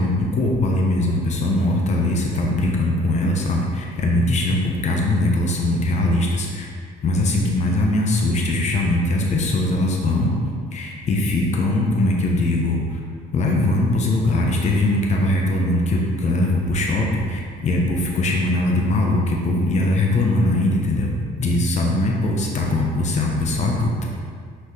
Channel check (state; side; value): normal; both; correlation 0.57